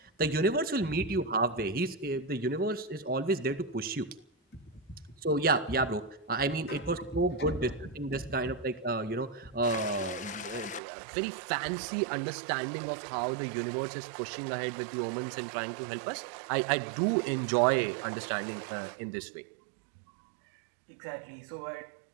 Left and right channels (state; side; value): drops out; left; at 10.8 s